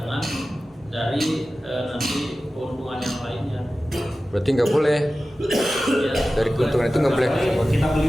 dari nanti keuntungan yang lainnya. Berarti nggak boleh Ya, dari keuntungan itu nggak boleh. Kita beli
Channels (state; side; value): normal; both; correlation 0.95